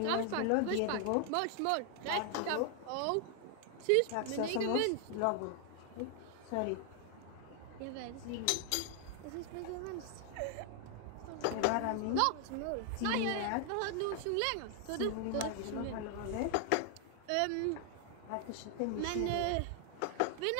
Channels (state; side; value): different; both; correlation 0.00